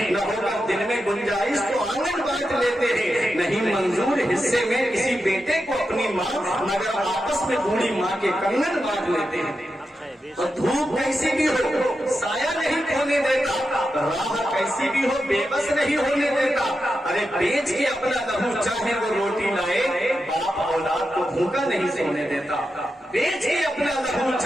نہ ہوگا دل میں گنجائش تو آنگن بانٹ لیتے ہیں، نہیں منظور حصے میں کسی بیٹے کو اپنی ماں، مگر آپس میں بوڑھی ماں کے کنگن بانٹ لیتے ہیں۔ اور دھوپ کیسی بھی ہو سایہ نہیں کھونے دیتا، راہ کیسی بھی ہو بے بس نہیں ہونے دیتا، ارے بیچ کے اپنا لہو چاہے وہ روٹی لائے باپ اولاد کو بھوکا نہیں سونے دیتا، بیچ کے اپنا لہو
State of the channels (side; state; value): both; normal; correlation 0.89